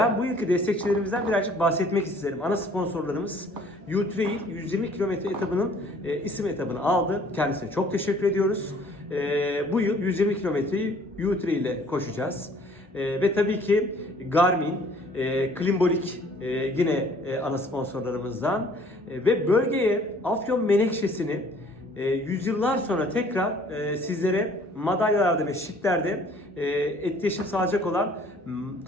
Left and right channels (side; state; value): both; normal; correlation 0.56